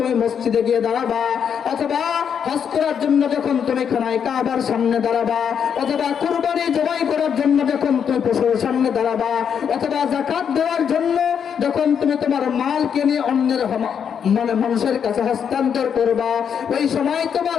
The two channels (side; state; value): right; quieter; 7.6 dB